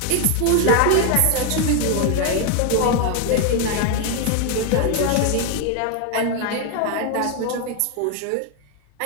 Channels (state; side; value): different; both; correlation 0.01